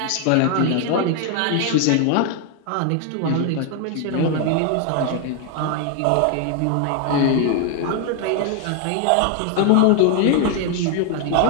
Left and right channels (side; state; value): both; different; correlation 0.00